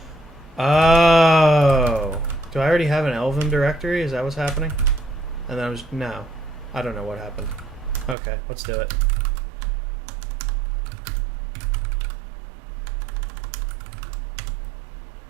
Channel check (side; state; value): left; drops out; at 8.2 s